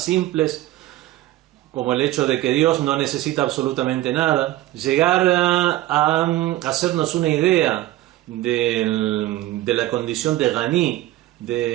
simples, como el hecho de que Dios no necesita absolutamente nada, llegar a hacernos una idea de la condición de Ghani,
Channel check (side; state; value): left; quieter; 15.7 dB